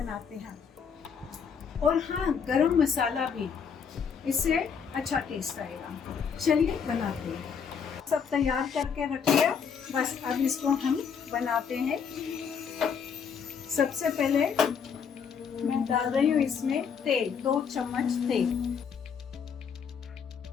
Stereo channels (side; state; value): right; quieter; 6.7 dB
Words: हैं। और हाँ, गरम मसाला भी, इससे अच्छा टेस्ट आएगा। चलिए बनाते हैं। सब तैयार करके रखिए, बस अब इसको हम बनाते हैं। सबसे पहले मैं डाल रही हूँ इसमें तेल, 2 चम्मच तेल।